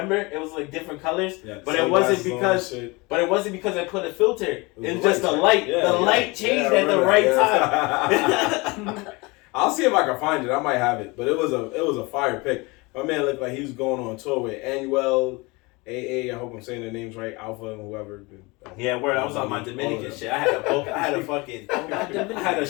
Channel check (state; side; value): quieter; right; 25.5 dB